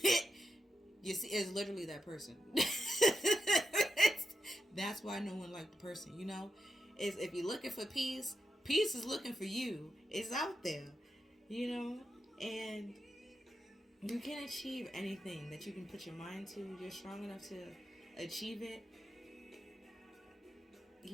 You see, it's literally that person. That's why no one liked the person, you know? Is if you're looking for peace, peace is looking for you. It's out there, you know? And you can achieve anything that you can put your mind to. You're strong enough to achieve it.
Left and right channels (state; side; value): normal; both; correlation 0.87